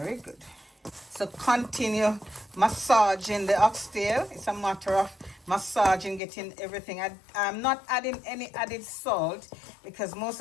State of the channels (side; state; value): right; drops out; at 6.2 s